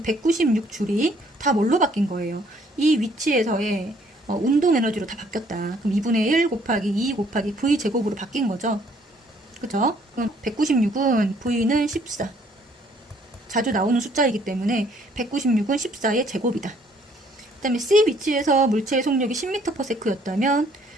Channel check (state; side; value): normal; both; correlation 0.63